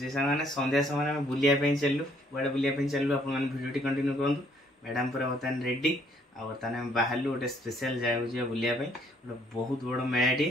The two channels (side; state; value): both; normal; correlation 0.65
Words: सांगने संध्या समय में बुलिया पे चललु बड़े बुलिया पे चललु आपन वीडियो टी कंटिन्यू करंतु मैडम पूरा बतन रेडी आ बतन हम बाहरलु गोटे स्पेशल जाय हो बुलिया पे बहुत बड़ मेलाटी